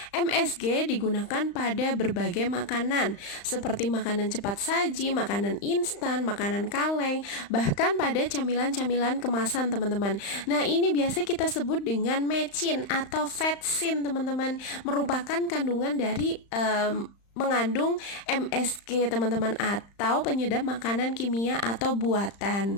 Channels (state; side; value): late; right; 35 ms